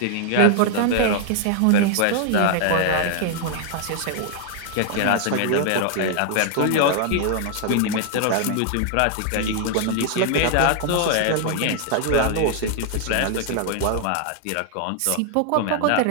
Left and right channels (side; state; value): both; different; correlation 0.00